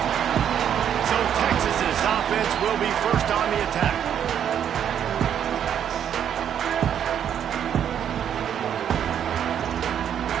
So Texas's offense will be first on the attack.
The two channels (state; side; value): quieter; left; 9.1 dB